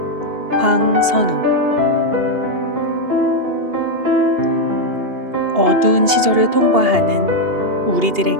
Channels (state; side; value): late; left; 2.8 ms